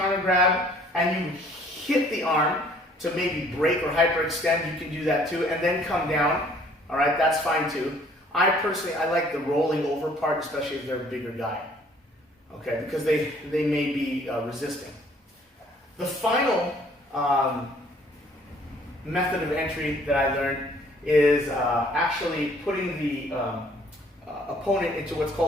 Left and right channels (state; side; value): normal; both; correlation 0.58